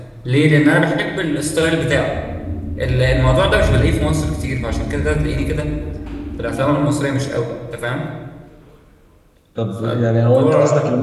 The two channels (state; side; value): identical; both; correlation 1.00